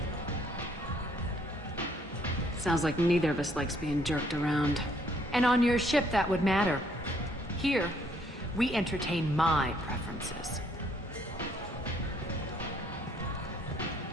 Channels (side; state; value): both; normal; correlation 0.67